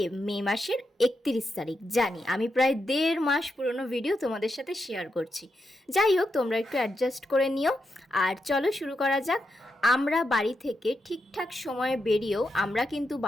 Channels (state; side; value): normal; both; correlation 0.85